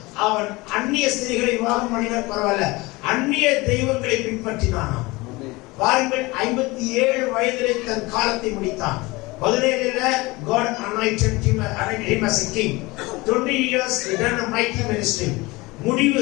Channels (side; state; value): right; quieter; 22.6 dB